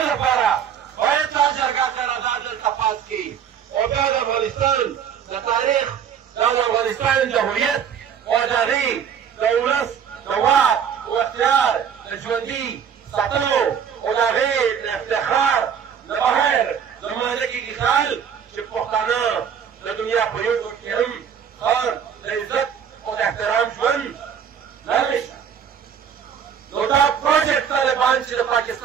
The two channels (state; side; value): quieter; left; 8.0 dB